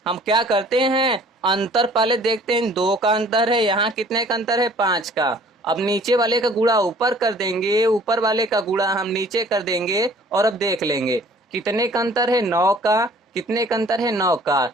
हम क्या करते हैं, अंतर पहले देखते हैं। 2 का अंतर है, यहाँ कितने का अंतर है? 5 का। अब नीचे वाले का गुणा ऊपर कर देंगे, ऊपर वाले का गुणा हम नीचे कर देंगे और अब देख लेंगे कितने का अंतर है? 9 का। कितने का अंतर है? 9 का।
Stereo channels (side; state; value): both; normal; correlation 0.53